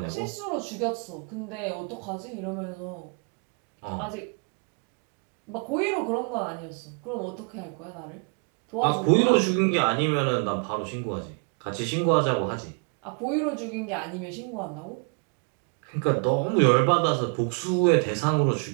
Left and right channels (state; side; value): quieter; left; 37.8 dB